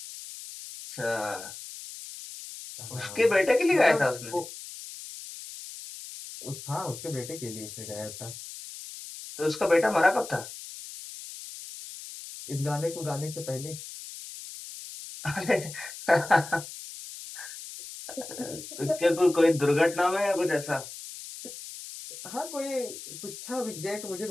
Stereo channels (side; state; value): left; noise; hiss, 12 dB below the sound